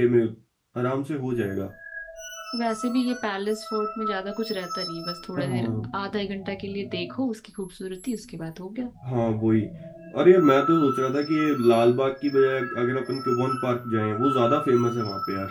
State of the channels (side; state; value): both; identical; correlation 1.00